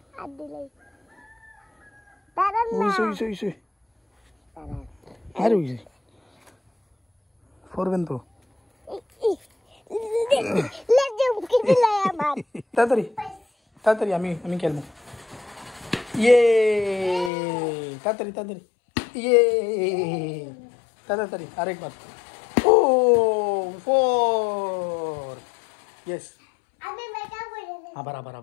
আর দিলাই দাঁড়ান না ওইসে আর ওইসে পড়বেন তো লেজে মুখে দিলাই আমার তাড়াতাড়ি আমি খেলবো ইয়ে তাড়াতাড়ি ইয়ে তাড়াতাড়ি আরেকবার ও 4 ইয়েস আমি মেকা বলে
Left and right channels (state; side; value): drops out; right; at 17.3 s